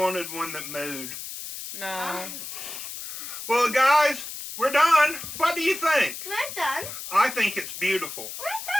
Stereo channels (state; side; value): noise; left; hiss, 9 dB below the sound